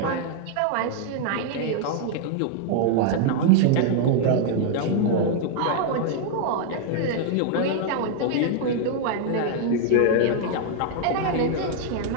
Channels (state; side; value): different; both; correlation 0.00